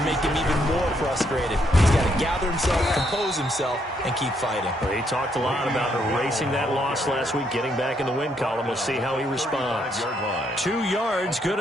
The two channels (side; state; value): both; normal; correlation 0.74